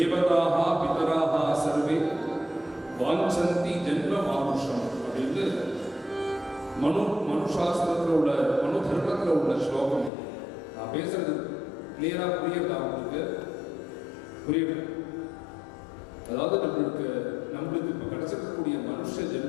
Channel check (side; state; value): right; drops out; at 10.1 s